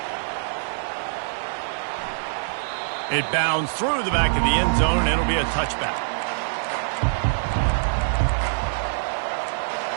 It bounds through the back of the end zone, and it'll be a touchback.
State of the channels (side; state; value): left; silent; digital silence